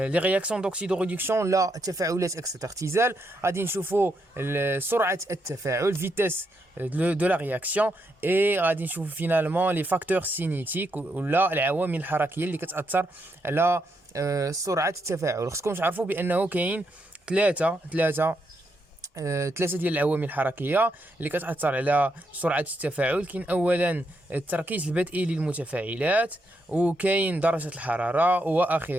رياكسيون دوكسيدو ريدكسيون، لا التفاعلات اكسيت اختزال. غادي نشوفوا سرعه التفاعل فيتاس دو لا رياكسيون، اي غادي نشوفوا فينالمون لي فاكتور سينيتيك ولا العوامل الحركيه اللي كتاثر على سرعه التفاعل. خصكم تعرفوا بانه كاين ثلاثه ديال العوامل الحركيه اللي كتاثر على سرعه التفاعل. كاين اولا التركيز البدئي للمتفاعلات، وكاين درجه الحراره،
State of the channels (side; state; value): both; normal; correlation 0.80